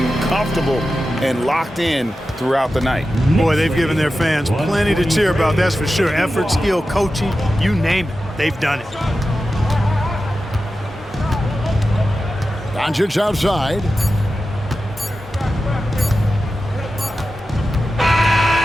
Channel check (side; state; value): both; normal; correlation 0.92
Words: comfortable and locked in throughout the night. Boy, they've given their fans plenty to cheer about, that's for sure. Effort, skill, coaching, you name it, they've done it. Doncic outside.